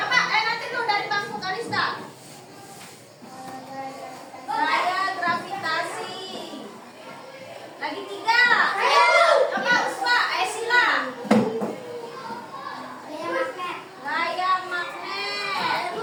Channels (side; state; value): both; identical; correlation 1.00